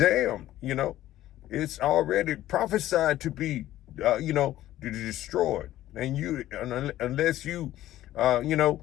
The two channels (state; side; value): quieter; right; 14.1 dB